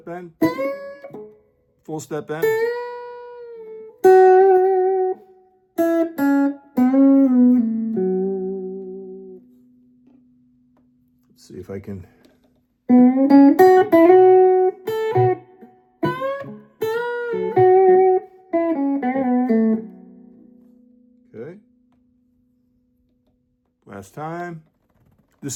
bend. Full step bend. Let's see if I can. Okay. Last time.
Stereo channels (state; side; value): identical; both; correlation 1.00